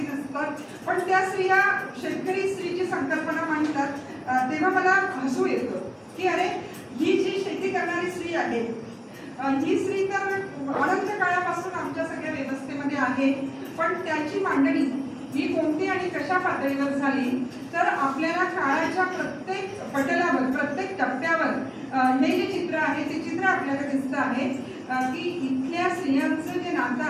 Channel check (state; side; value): identical; both; correlation 1.00